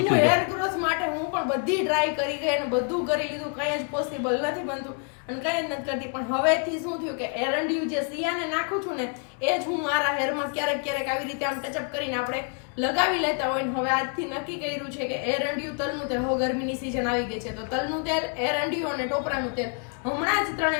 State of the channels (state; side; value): quieter; right; 39.1 dB